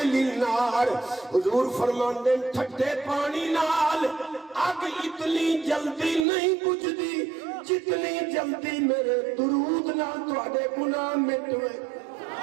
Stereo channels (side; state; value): left; drops out; at 6.2 s